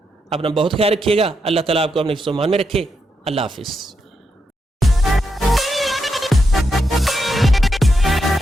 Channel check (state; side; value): normal; both; correlation 0.83